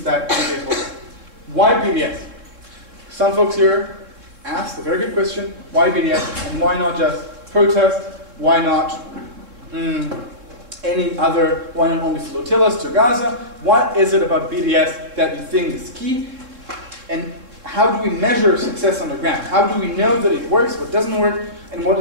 that BDS holds. Why BDS? Some folks here asked a very good question, why BDS, and why not just protest? Why not any other, why not only flotillas to Gaza? What is it about BDS that you think is key? And how do we measure success on the ground? How do we know that it works, what doesn't work, and what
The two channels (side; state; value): left; late; 3.7 ms